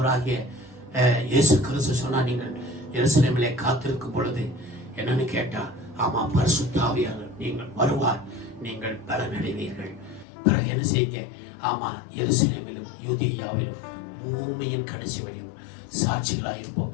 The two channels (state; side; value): drops out; right; at 10.2 s